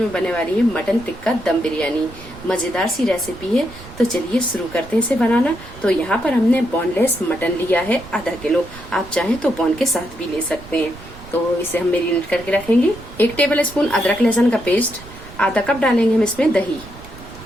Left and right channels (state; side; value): noise; right; rumble, 17 dB below the sound